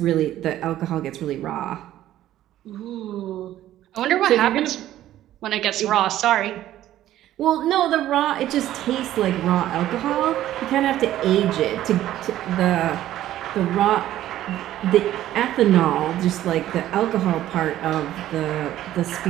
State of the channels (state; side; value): quieter; left; 13.2 dB